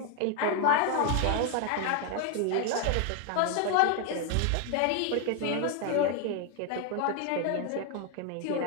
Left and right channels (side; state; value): both; different; correlation 0.01